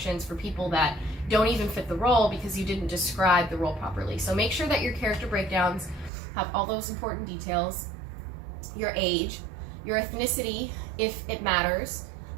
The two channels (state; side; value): drops out; left; at 6.1 s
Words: for people that don't even fit the role because you didn't describe the role properly. So make sure that your character breakdowns have all those important details: your age, your ethnicity, if it matters.